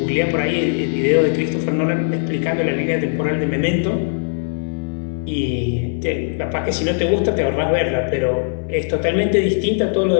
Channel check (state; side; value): silent; right; digital silence